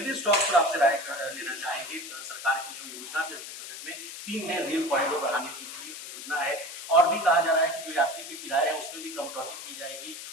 स्टॉक पर आपसे राय लेना चाहेंगे। सरकार की जो योजना थी बजट में 3 नए रेल कॉरिडोर बढ़ाने की योजना है और भी कहा जा रहा है कि जो यात्री के किराए हैं उसमें भी कटौती की जाएगी।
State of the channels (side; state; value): left; noise; hiss, 10 dB below the sound